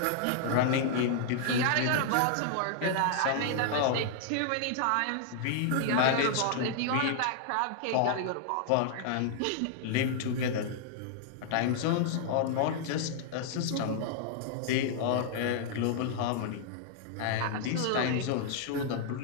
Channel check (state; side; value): different; both; correlation -0.01